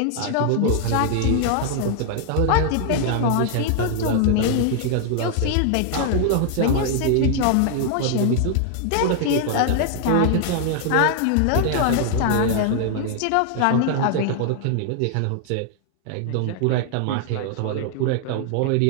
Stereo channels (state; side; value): different; both; correlation 0.00